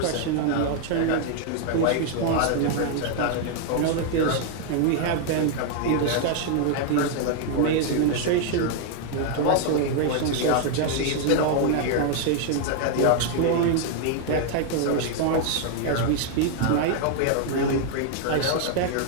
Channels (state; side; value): different; both; correlation 0.00